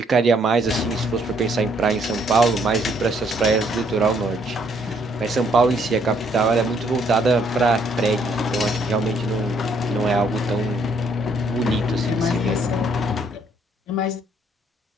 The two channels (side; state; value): both; normal; correlation 0.68